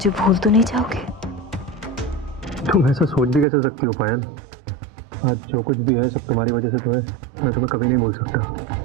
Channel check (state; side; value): drops out; left; at 3.5 s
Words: भूल तो नहीं जाओगे? तुम ऐसा सोच भी कैसे सकती हो पायल? आज जो कुछ भी है सब तुम्हारी वजह से तो है। मैं तुम्हें कभी नहीं भूल सकता।